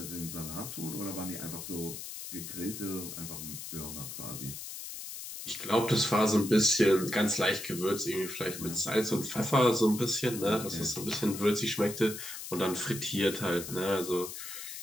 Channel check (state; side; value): noise; left; hiss, 9 dB below the sound